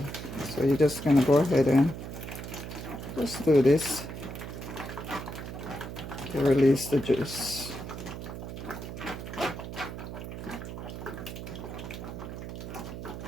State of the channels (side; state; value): right; noise; hum, 8 dB below the sound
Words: So you're just gonna go ahead and just do this to release the juice.